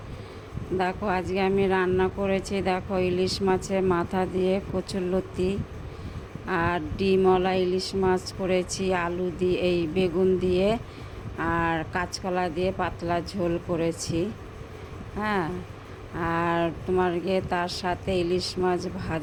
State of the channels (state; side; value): identical; both; correlation 1.00